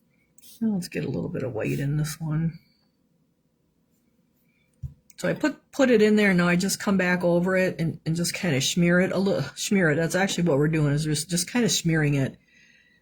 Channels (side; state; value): both; identical; correlation 1.00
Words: Now let's get a little bit of white in this one. So I put it in there. Now I just come back over it and just kind of smear it a little. Smear it. That's actually what we're doing, is just kind of smearing it.